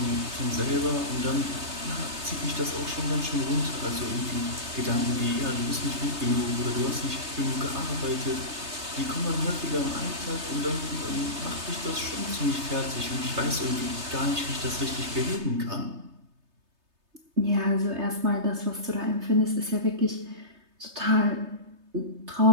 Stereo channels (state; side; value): late; left; 3.3 ms